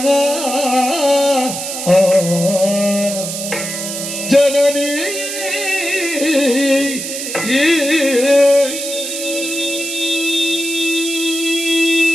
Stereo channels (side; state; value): right; noise; hiss, 6 dB below the sound